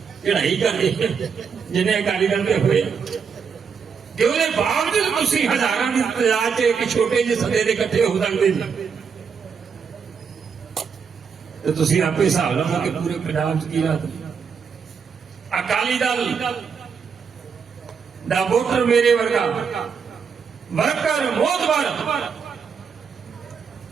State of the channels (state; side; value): quieter; left; 6.2 dB